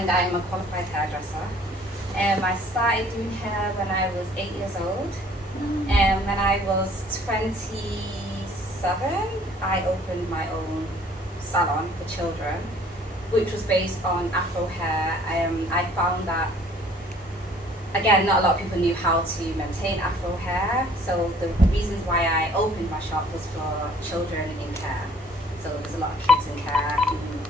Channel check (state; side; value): normal; both; correlation 0.56